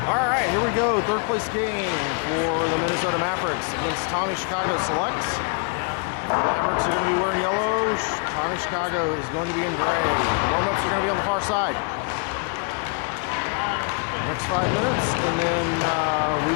All right, here we go. Third place game for the Minnesota Mavericks against Tommy Chicago Selects. Mavericks are going to be wearing yellow. Tommy Chicago is going to be in gray. Warm-ups are going to be on the far side. Next 5 minutes, and then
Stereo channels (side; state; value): right; quieter; 36.9 dB